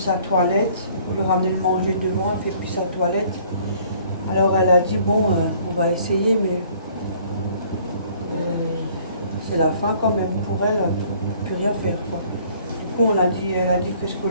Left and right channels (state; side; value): inverted; both; correlation -0.57